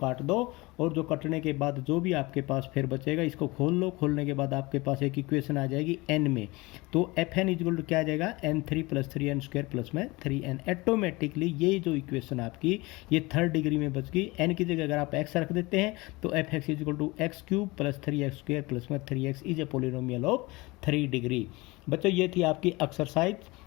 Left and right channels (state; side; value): quieter; right; 23.0 dB